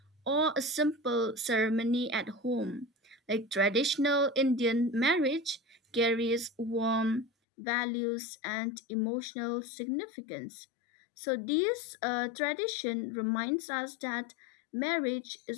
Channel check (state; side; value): drops out; right; at 7.3 s